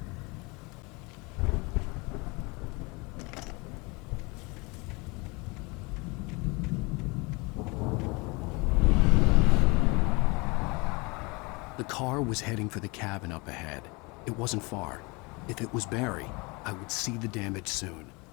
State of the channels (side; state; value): right; quieter; 27.1 dB